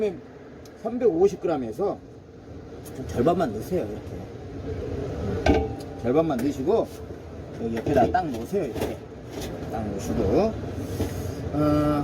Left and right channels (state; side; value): identical; both; correlation 1.00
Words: 350g에서 절반만 넣으세요. 이렇게 절반만 넣으시고 여기 옆에다 딱 놓으세요. 이렇게 딱 놓으시고